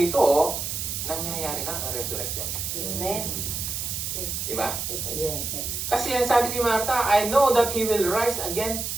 nangyayari na ang resurrection. Amen. Diba? Yes. Kasi yan sabi ni Marta, I know that He will rise again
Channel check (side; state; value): right; noise; hiss, 3 dB below the sound